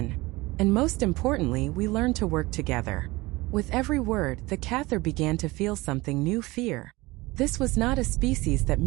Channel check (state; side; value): quieter; left; 21.5 dB